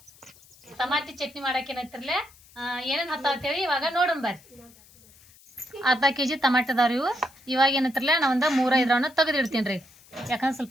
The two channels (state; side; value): noise; left; hiss, 26 dB below the sound